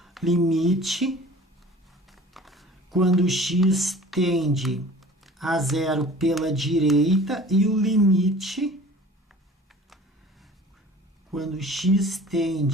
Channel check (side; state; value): both; normal; correlation 0.45